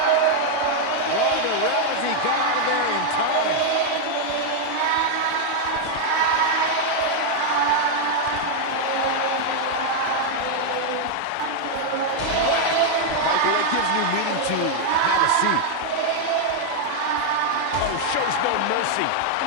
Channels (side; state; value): both; different; correlation 0.00